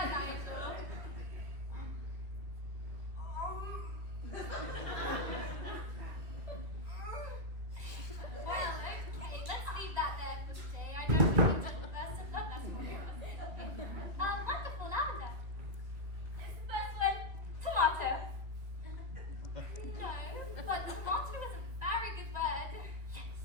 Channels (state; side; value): late; left; 2.3 ms